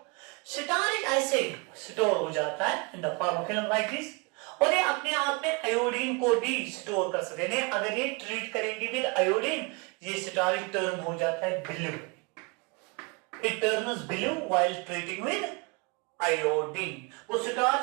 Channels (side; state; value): left; quieter; 30.1 dB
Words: स्टार्च ऐसे स्टोर हो जाता है in the form of film like this, और ये अपने आप में आयोडीन को भी स्टोर कर सकते हैं। अगर ये ट्रीट करेंगे विद आयोडीन, ये स्टार्च टर्न हो जाता है blue, It turns blue while treating with iodine. वो